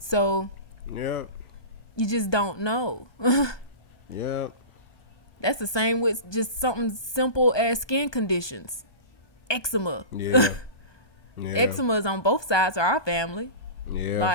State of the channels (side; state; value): right; late; 1.2 ms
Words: yeah, you just don't know. Yeah. That's the same with just something simple as skin conditions. Eczema. Yeah. Yeah. Eczema is on both sides of our family. Yeah.